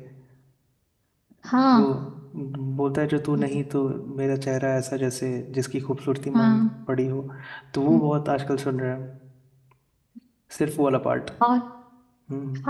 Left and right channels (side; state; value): both; identical; correlation 1.00